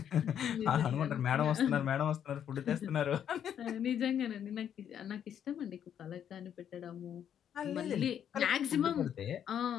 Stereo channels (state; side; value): quieter; right; 9.2 dB